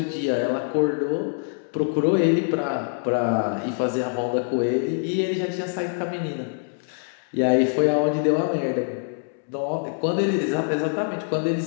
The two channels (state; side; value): silent; right; 62 dB below the other